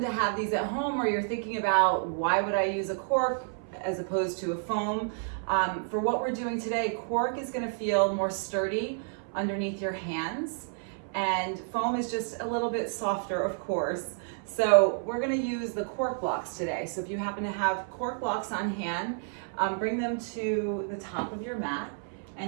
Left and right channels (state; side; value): silent; left; 58 dB below the other